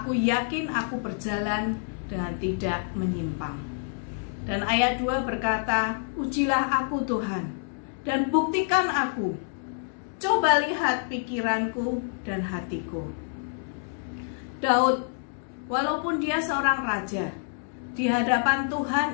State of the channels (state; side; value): silent; right; digital silence